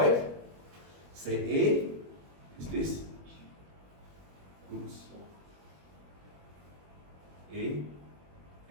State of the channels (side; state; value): left; late; 21 ms